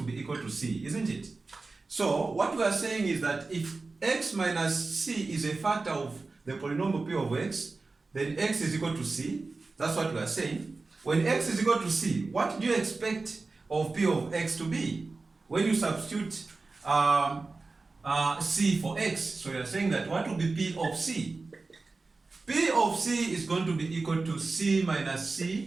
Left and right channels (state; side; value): quieter; left; 3.7 dB